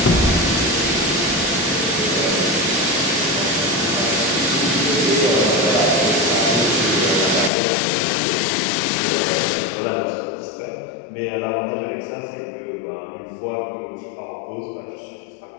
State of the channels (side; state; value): right; drops out; at 7.5 s